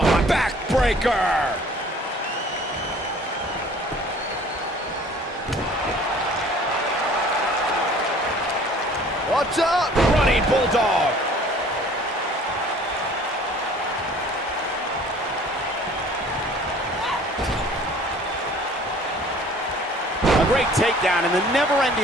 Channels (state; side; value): normal; both; correlation 0.51